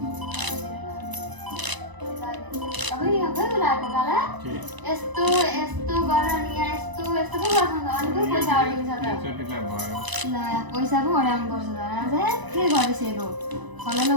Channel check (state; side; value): late; left; 1.0 ms